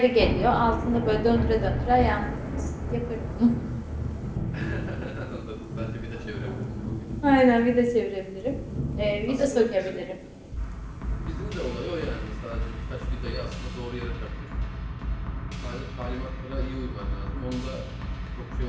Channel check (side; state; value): both; identical; correlation 1.00